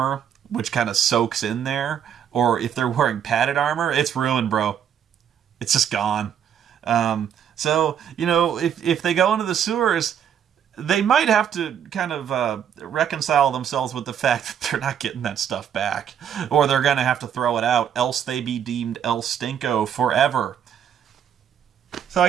which kind of soaks in there. Or if they're wearing padded armor, it's ruined, bro. It's just gone. So, you know, if they go into the sewers, they might have to kind of reconcile themselves with the fact that they're not getting that stuff back. Or they're going to have to throw it out, else they be deemed El Stinko forever. So I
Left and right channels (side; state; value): left; quieter; 8.8 dB